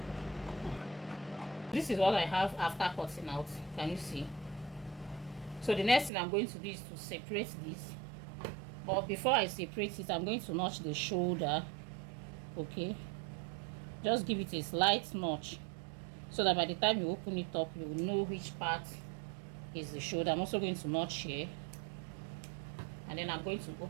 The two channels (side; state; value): left; drops out; at 6.1 s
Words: This is what I have after cutting out. Can you see? So the next thing I'm going to do is to separate this. But before I separate it, I'm going to notch the shoulder. Okay, just give it a slight notch so that by the time you open it up, you will know which part is the shoulder. I'm also going to notch here, and then I'm going to